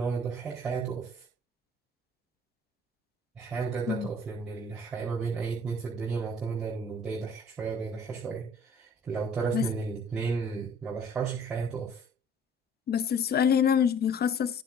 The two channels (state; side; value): normal; both; correlation 0.54